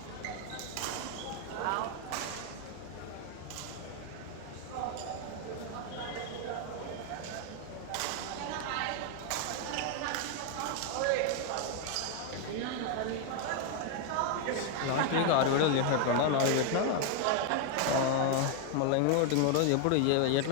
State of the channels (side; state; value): both; different; correlation 0.00